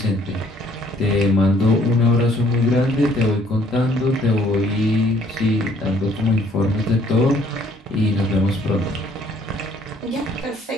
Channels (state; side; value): normal; both; correlation 0.62